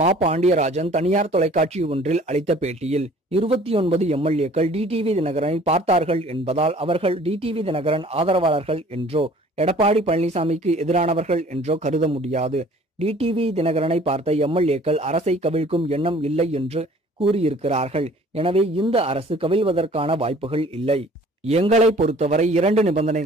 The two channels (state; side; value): normal; both; correlation 0.52